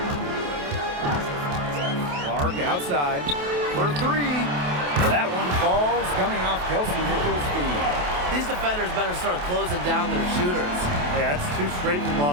Clark outside for 3. That one falls, coming off Kelsey Mitchell's feet. These defenders better start closing down their shooters. Yeah, that's 2 straight from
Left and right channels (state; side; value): late; left; 28 ms